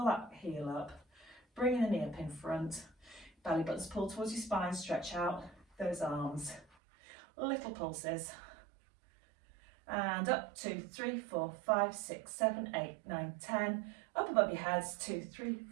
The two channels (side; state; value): left; drops out; at 6.7 s